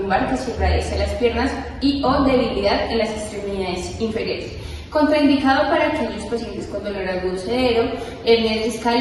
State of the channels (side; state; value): both; identical; correlation 1.00